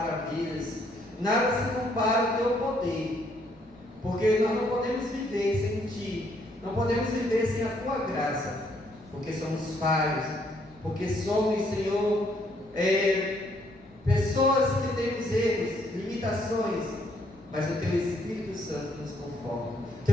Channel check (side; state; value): right; noise; rumble, 27 dB below the sound